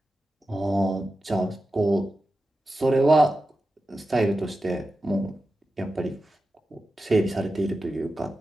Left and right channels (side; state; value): both; normal; correlation 0.92